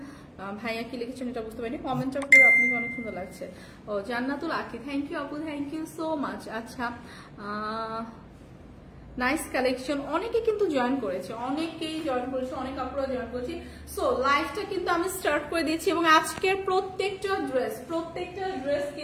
ভাইয়া কি লিখেছেন এটা বুঝতে পারিনি। কমেন্টটা করে আপনাকে অনেক সুন্দর লাগছে। ও জান্নাতুল আকি, থ্যাংক ইউ আপু, থ্যাংক ইউ সো মাচ। আচ্ছা, নাইস কালেকশন। অনেকে কিন্তু জয়েন করেছে, অনেকেই জয়েন করেছে, অনেক আপুরা জয়েন করেছে। সো লাইভটা কিন্তু আমি স্টার্ট করে দিচ্ছি এবং আজকের প্রত্যেকটা ড্রেস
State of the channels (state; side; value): identical; both; correlation 1.00